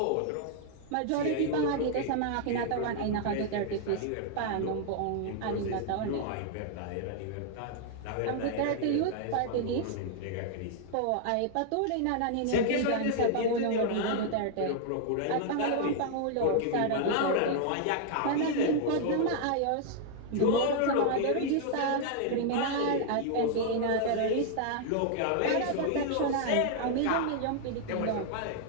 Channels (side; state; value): both; different; correlation -0.01